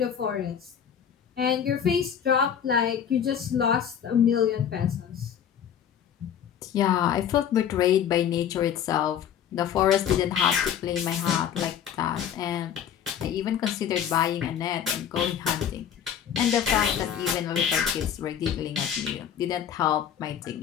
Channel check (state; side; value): quieter; right; 8.9 dB